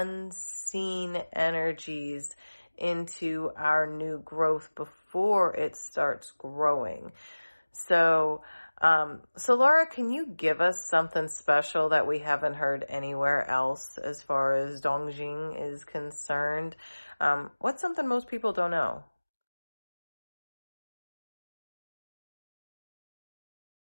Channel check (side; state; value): both; inverted; correlation -1.00